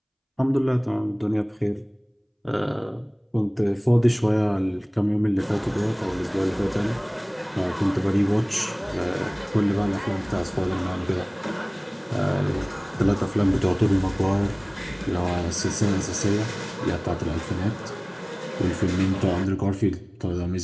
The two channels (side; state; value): both; identical; correlation 1.00